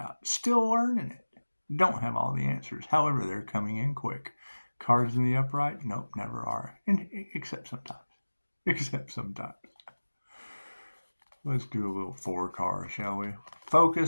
Still learning it. Don't have all the answers. However, they're coming in quick. Cards in the upright? Nope, never are. Except sometimes. Let's do a little 4 card, shall we?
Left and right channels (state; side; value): inverted; both; correlation -1.00